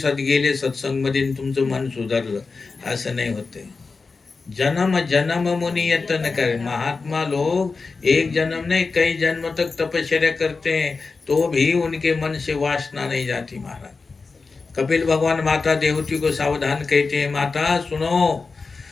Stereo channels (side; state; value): right; quieter; 4.3 dB